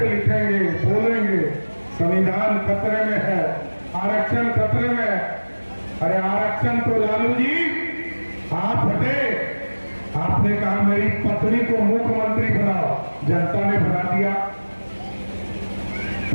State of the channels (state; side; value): inverted; both; correlation -1.00